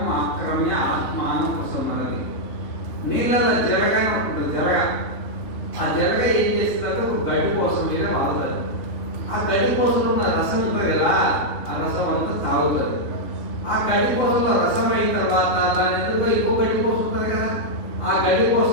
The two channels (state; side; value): late; right; 3.4 ms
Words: ఆక్రమ్య ఆత్మాను ఉపసంహరతి. నీళ్ళలో జరగని ఉంటుంది, జరగ. ఆ జరగ ఏం చేస్తుందంటే ఒక గడ్డి కోసం మీద వాడుతుంది. ఆ గడ్డి కోసం ఉన్న రసం ఉంటుంది కదా, ఆ రసం అంతా తాగుతుంది. ఆ గడ్డి కోసంలో రసం అయిన తర్వాత దాని ఎదురుగా ఇంకో గడ్డి కోసం ఉంటుంది కదా, ఆ గడ్డి